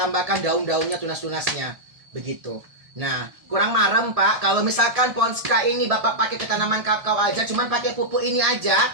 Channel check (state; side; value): late; left; 1.7 ms